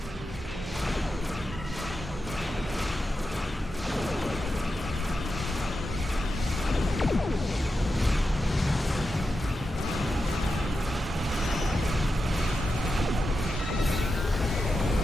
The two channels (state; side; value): normal; both; correlation 0.89